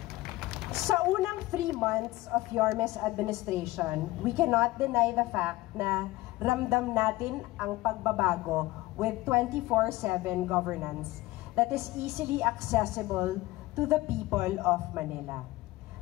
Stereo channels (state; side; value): quieter; right; 18.8 dB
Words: Sa unang 3 months of Yorme's administration, we cannot deny the fact na ramdam natin ang pagbabago with 24/7 governance that is easily accessible to the people of Manila.